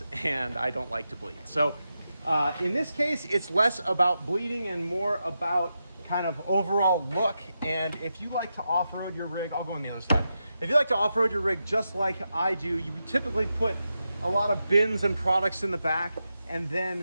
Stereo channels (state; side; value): inverted; both; correlation -0.88